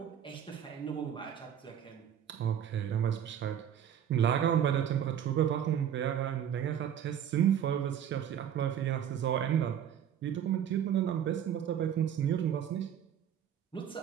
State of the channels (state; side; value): quieter; left; 9.4 dB